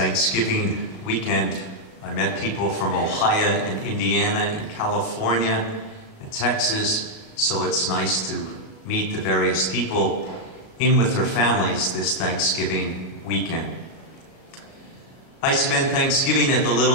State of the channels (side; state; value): right; late; 37 ms